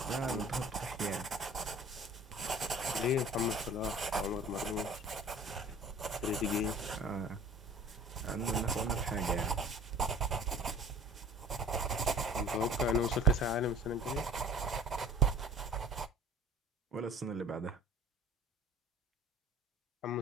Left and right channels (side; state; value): both; normal; correlation 0.47